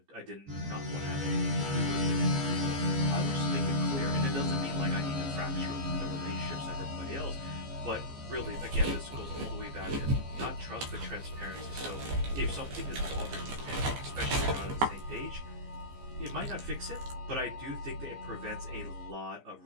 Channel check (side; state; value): left; late; 15 ms